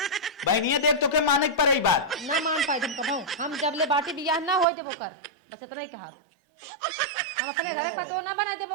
बहनिया देख तो के माने के पड़े बात ना मान पाए तुम कभाऊ हम जब ले बाटी बियाह ना होई देबो कर बस इतना ही कहा हम अपने घर पतो ना बनाए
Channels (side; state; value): left; drops out; at 4.7 s